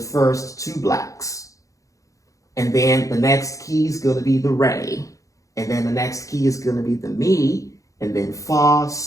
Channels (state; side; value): late; right; 0.16 ms